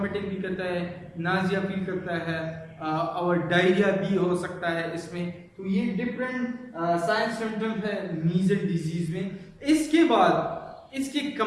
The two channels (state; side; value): identical; both; correlation 1.00